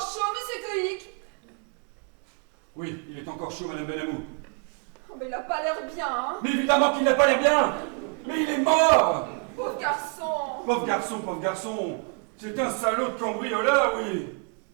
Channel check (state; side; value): quieter; left; 36.6 dB